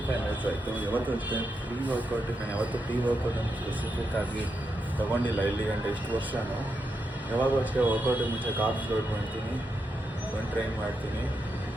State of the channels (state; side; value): normal; both; correlation 0.84